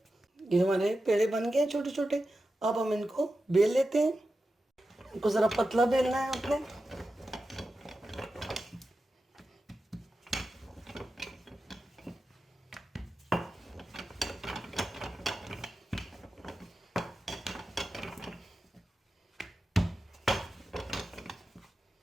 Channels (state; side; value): normal; both; correlation 0.91